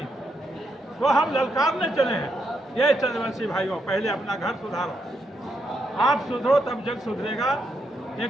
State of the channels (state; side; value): normal; both; correlation 0.80